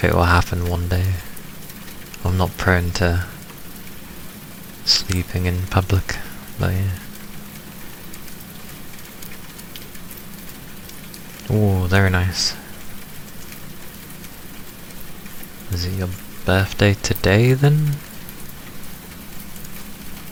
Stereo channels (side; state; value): both; identical; correlation 1.00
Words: it will happen one day. I'm not prone to sleeping in public, but yeah. Oh, very nice. Is it your birthday today then?